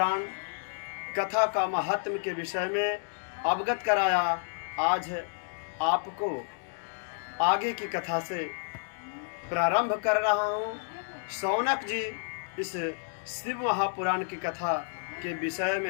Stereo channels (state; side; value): silent; right; digital silence